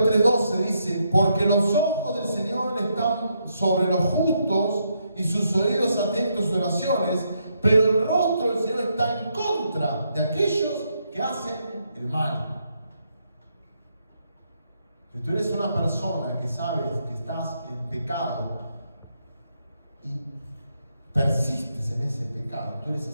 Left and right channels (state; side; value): inverted; both; correlation -0.78